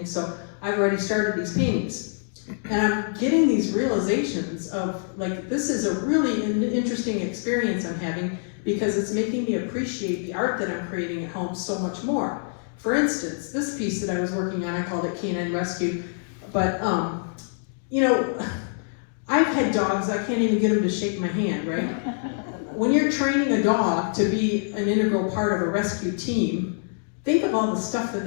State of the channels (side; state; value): right; silent; digital silence